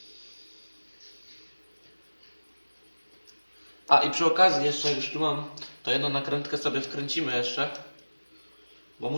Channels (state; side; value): inverted; both; correlation -1.00